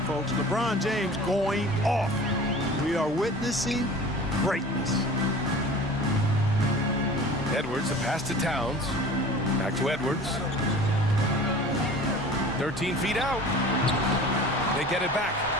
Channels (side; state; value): both; normal; correlation 0.41